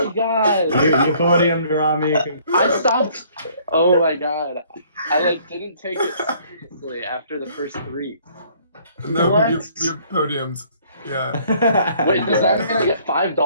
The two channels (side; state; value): both; inverted; correlation -0.60